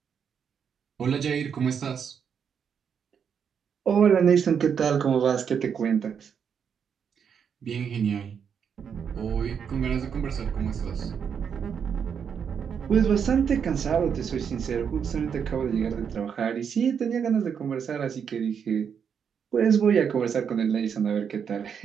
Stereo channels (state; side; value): quieter; left; 7.3 dB